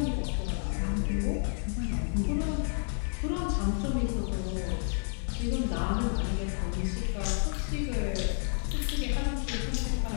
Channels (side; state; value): right; silent; 57 dB below the other